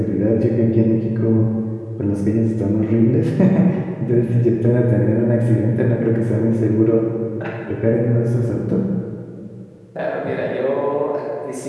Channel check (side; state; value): both; identical; correlation 1.00